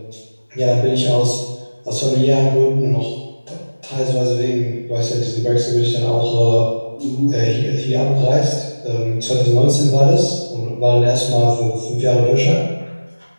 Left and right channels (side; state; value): both; inverted; correlation -1.00